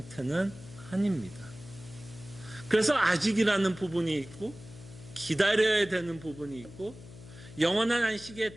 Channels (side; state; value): left; noise; hum, 17 dB below the sound